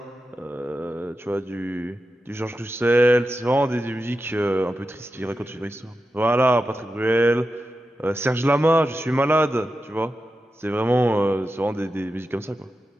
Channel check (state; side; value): normal; both; correlation 0.90